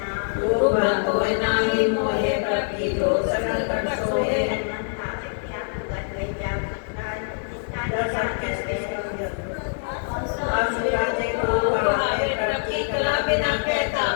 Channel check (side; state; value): right; silent; 62 dB below the other